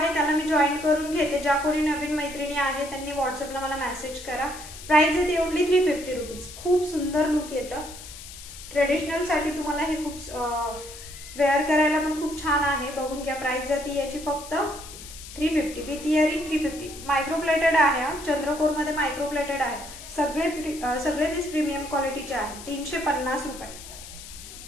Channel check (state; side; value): noise; left; hiss, 14 dB below the sound